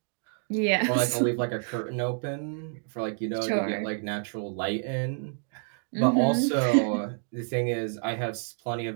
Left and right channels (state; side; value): silent; left; 59 dB below the other